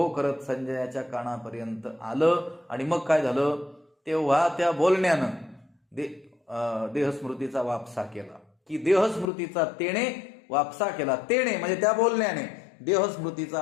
करत संजयाच्या कानापर्यंत आलं. आणि मग काय झालं? तेव्हा त्या बोलण्यानं देहस्मृतीचा वापसा केला. की देहस्मृतीचा तेणे वापसा केला. तेणे म्हणजे त्या बोलण्याने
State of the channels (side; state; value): right; drops out; at 9.2 s